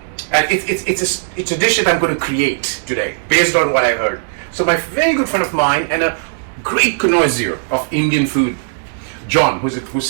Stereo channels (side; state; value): left; silent; digital silence